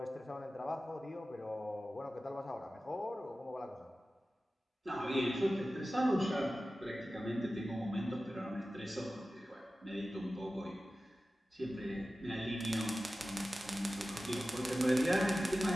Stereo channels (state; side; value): normal; both; correlation 0.95